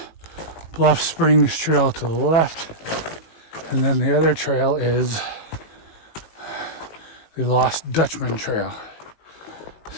Bluff Springs Trail to the left, and then the other trail is the Lost Dutchman Trail.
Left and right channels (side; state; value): right; late; 18 ms